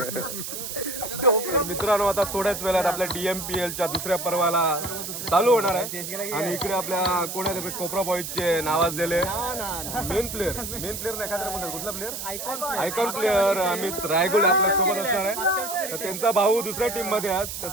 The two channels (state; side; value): noise; right; hiss, 6 dB below the sound